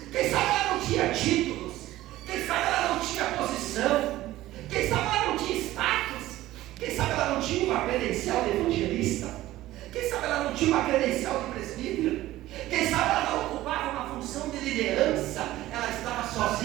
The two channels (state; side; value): quieter; left; 15.7 dB